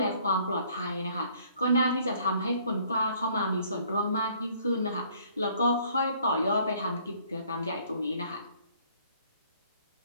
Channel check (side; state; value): both; inverted; correlation -0.61